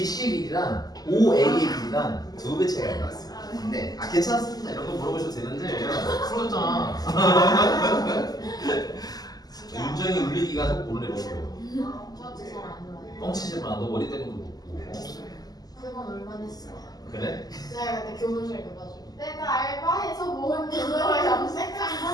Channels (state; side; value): late; right; 0.19 ms